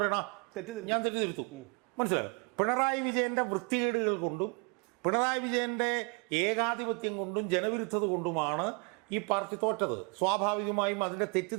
ഞാൻ തെറ്റ് തിരുത്തും. മനസ്സിലായോ? പിണറായി വിജയന്റെ വൃത്തികേടുകൾ കൊണ്ടും പിണറായി വിജയന്റെ ഏകാധിപത്യം കൊണ്ടും ജനവിരുദ്ധത കൊണ്ടുമാണ് ഈ പാർട്ടി തോറ്റത്. സ്വാഭാവികമായും അതിന്റെ തെറ്റ്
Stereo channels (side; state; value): left; quieter; 32.7 dB